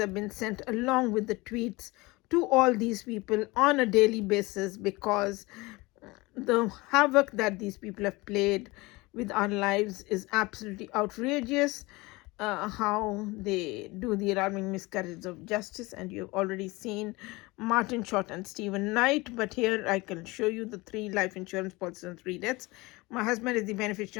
been sent along with the tweets to all these people on a daily basis, because the havoc that these people have played with our lives is absolutely outrageous. How they do the alarming miscarriage of justice, and you've already seen Martin Short and Stephen Knight, but here I can show you the 3 life insurance policies and 3 deaths. My husband is the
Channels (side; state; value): right; quieter; 22.9 dB